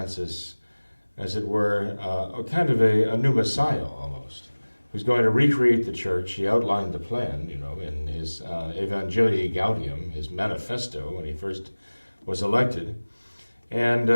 as it were, kind of a new Messiah almost, who's going to recreate the church. He outlined the plan, in his Evangelii Gaudium, his manifesto, when he first was elected. And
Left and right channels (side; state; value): both; inverted; correlation -1.00